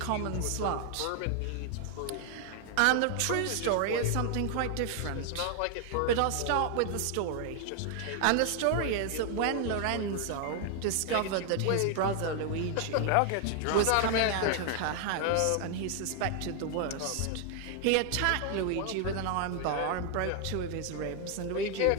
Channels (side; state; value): both; different; correlation 0.00